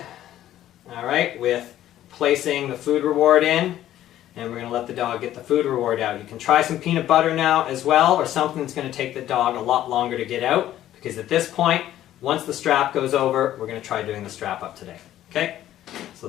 all right, with placing the food reward in, and we're going to let the dog get the food reward out. You can try some peanut butter now as well, or something that's going to take the dog a lot longer to get out, because at this point, once the strap goes over, we're going to try doing the strap up today. Okay? So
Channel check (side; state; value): right; quieter; 12.8 dB